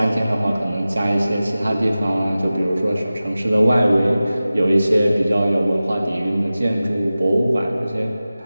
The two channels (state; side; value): inverted; both; correlation -0.96